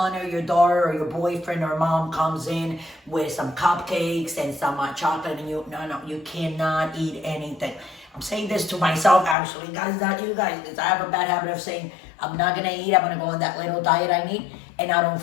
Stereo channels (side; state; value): right; drops out; at 9.3 s